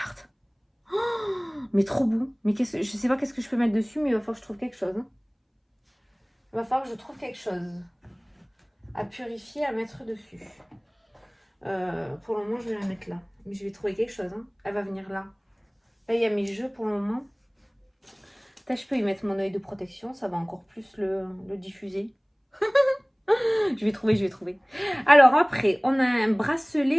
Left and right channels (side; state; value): both; identical; correlation 1.00